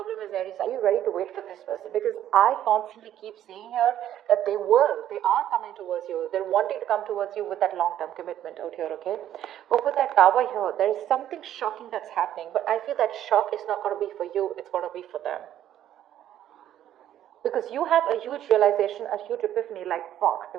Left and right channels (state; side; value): quieter; left; 11.5 dB